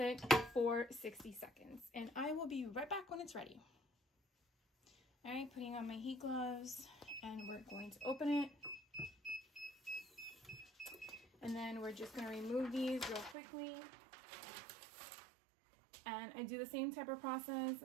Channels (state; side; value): drops out; left; at 13.4 s